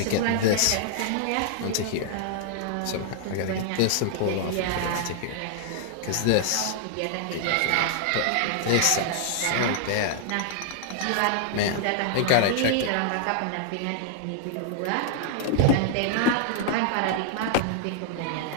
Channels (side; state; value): both; different; correlation 0.00